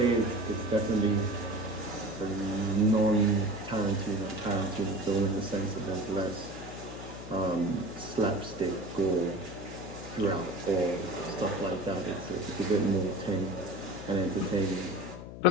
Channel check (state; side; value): noise; left; hum, 11 dB below the sound